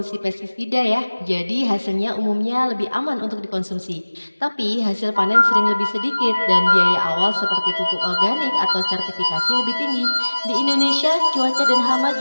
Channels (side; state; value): both; inverted; correlation -1.00